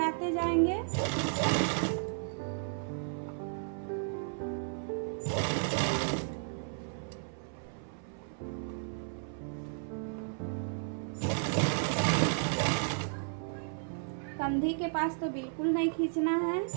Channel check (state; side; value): silent; left; 55 dB below the other